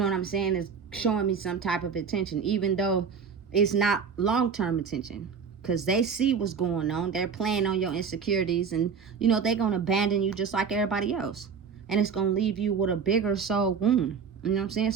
what I'm saying, is showing me some type of attention, even though it's not long-term attention, because they see what's going on. They're playing on your insecurities, and they're gonna abandon you just like everybody else, and it's gonna leave you with a bigger soul wound. You know what I'm saying?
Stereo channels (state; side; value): quieter; left; 6.3 dB